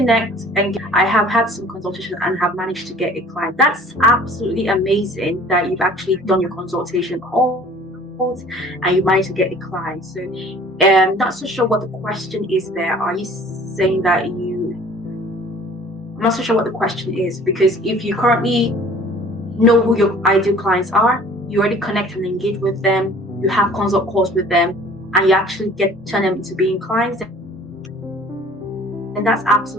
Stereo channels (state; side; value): normal; both; correlation 0.50